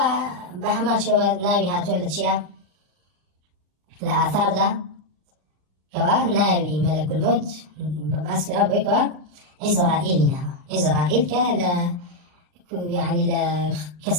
شو ناوي هاتو لتشيا لآثار دا كوا ناوي ملك الموت باسكرا بوي كوا إسرائيل كلا يعني لا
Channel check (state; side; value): late; left; 40 ms